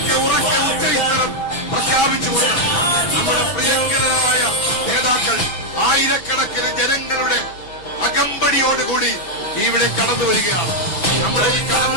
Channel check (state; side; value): late; right; 5.8 ms